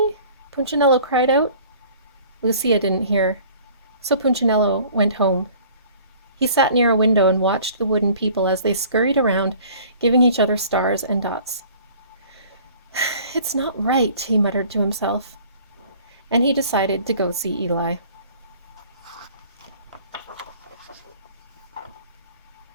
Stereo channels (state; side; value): inverted; both; correlation -0.50